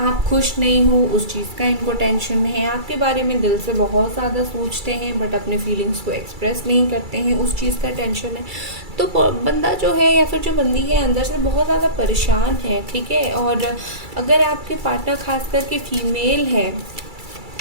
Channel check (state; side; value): late; left; 2.3 ms